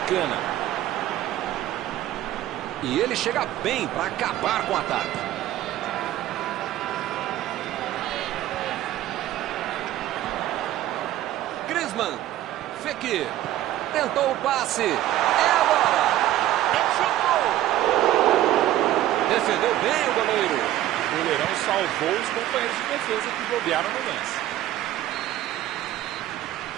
E ele chega bem para acabar com o ataque. Griezmann. Fekir. Tentou o passe. É agora. Defendeu bem o goleiro. O goleirão salvou os companheiros de defesa que bobearam no lance.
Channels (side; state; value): left; quieter; 13.8 dB